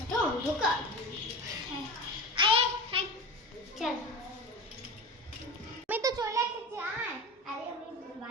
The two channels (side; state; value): both; normal; correlation 0.29